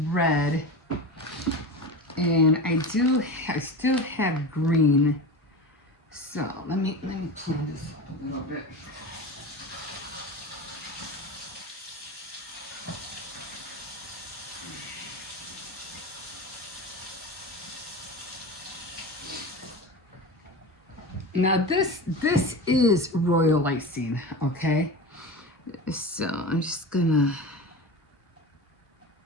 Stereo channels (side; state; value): both; normal; correlation 0.28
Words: red, and I still have green. So let me clean this up a little bit. Now this is royal icing, okay? So I'm just gonna